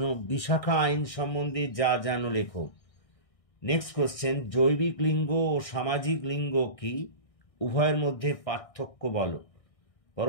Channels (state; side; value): late; right; 1.6 ms